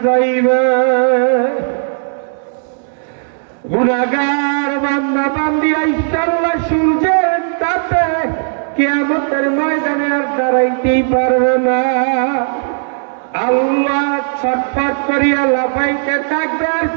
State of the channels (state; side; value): silent; left; 70 dB below the other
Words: যাইবে, গুনাহগার বান্দা বান্দি আল্লাহ সূর্যের তাপে কিয়ামতের ময়দানে আর দাঁড়াইতেই পারবে না। আল্লাহ ছটফট করিয়া লাফাইতে থাকবে আর